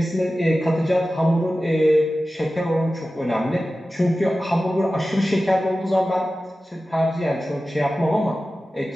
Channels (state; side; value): normal; both; correlation 0.95